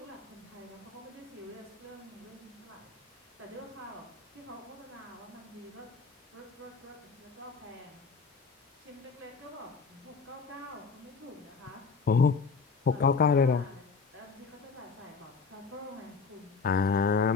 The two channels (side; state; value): right; quieter; 5.0 dB